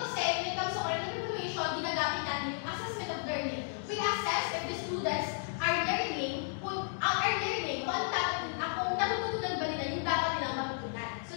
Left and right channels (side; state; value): right; silent; digital silence